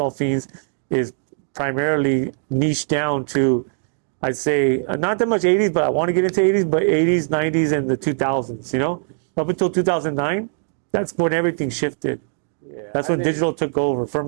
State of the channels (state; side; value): silent; left; digital silence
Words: Fiends is primarily niched down to, I'd say, not that much 80s, but I want to get into 80s, but 80s, 90s, and the 2000s. You know, up until 2009. That's when everything shifted. Yeah, that's when digital took over for